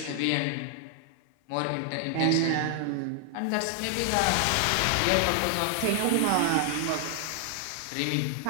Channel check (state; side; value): different; both; correlation 0.00